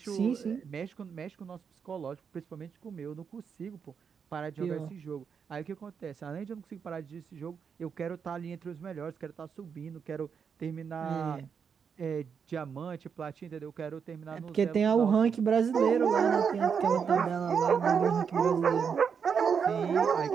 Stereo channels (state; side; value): quieter; left; 6.6 dB